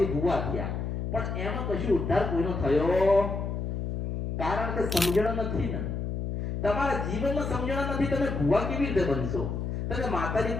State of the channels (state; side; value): noise; left; hum, 3 dB below the sound